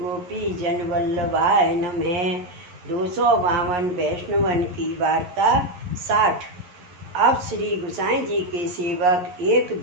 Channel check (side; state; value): left; late; 11 ms